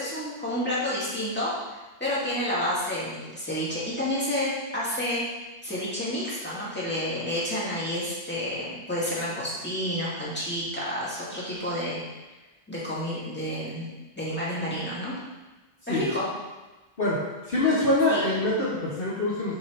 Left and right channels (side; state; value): both; normal; correlation -0.07